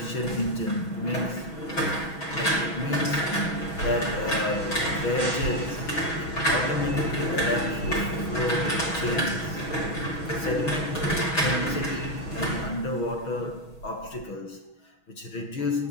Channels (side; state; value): right; late; 6.2 ms